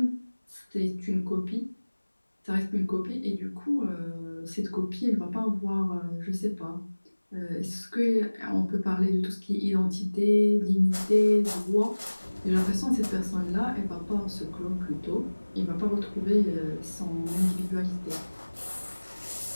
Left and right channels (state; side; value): inverted; both; correlation -1.00